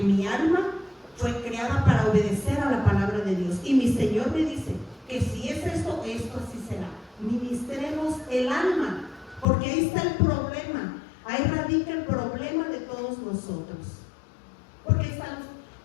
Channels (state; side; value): drops out; right; at 9.5 s